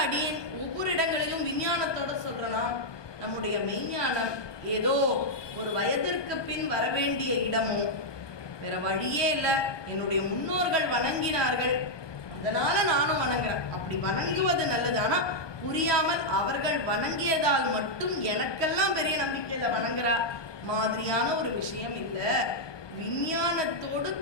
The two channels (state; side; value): late; right; 1.2 ms